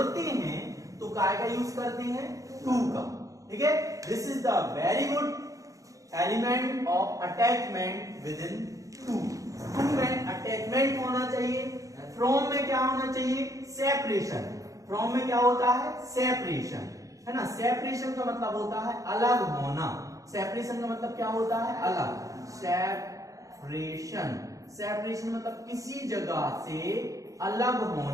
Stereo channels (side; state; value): left; late; 0.16 ms